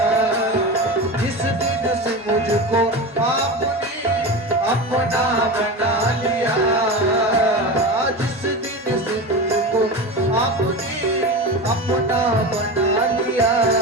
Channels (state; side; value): normal; both; correlation 0.25